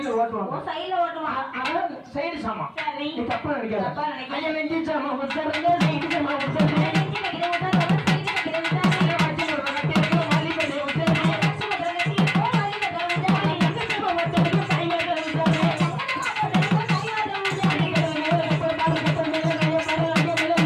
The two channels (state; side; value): identical; both; correlation 1.00